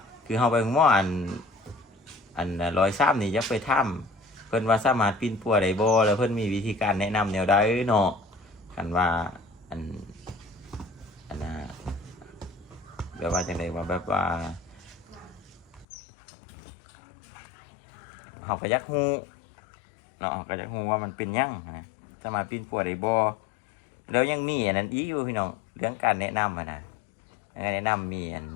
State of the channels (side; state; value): right; drops out; at 15.9 s